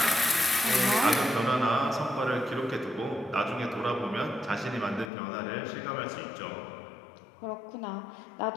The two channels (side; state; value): right; drops out; at 5.1 s